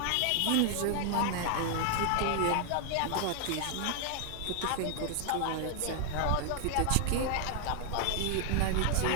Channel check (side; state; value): both; different; correlation 0.00